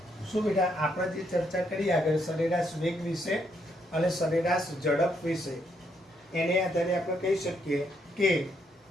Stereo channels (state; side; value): normal; both; correlation 0.75